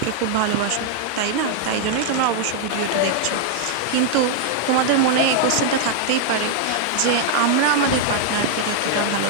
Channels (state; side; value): different; both; correlation 0.00